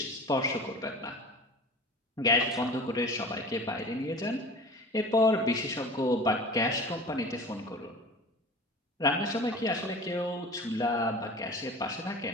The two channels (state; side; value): normal; both; correlation 0.38